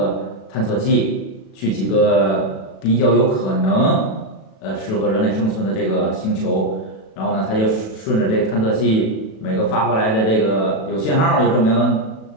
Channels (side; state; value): right; late; 37 ms